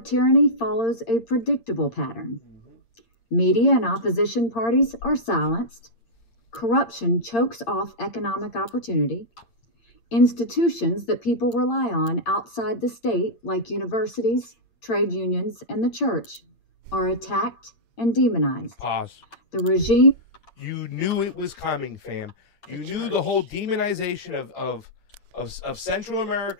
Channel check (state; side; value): late; right; 8.7 ms